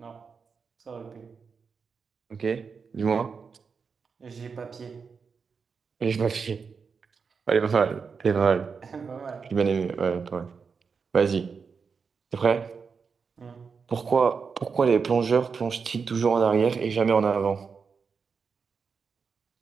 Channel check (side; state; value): left; quieter; 5.5 dB